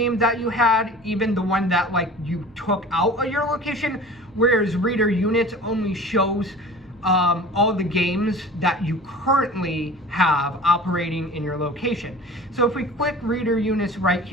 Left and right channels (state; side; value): noise; right; hum, 29 dB below the sound